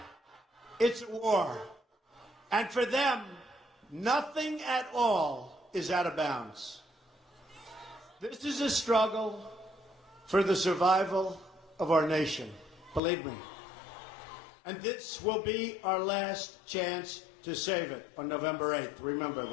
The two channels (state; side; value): drops out; right; at 13.0 s